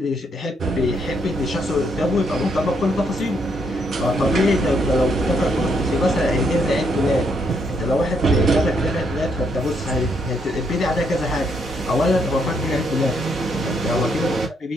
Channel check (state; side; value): normal; both; correlation 0.74